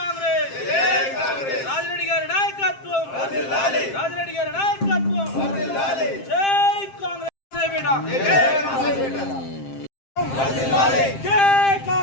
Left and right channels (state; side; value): late; right; 7.6 ms